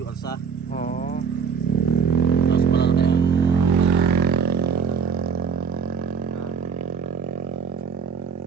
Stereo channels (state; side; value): quieter; left; 6.4 dB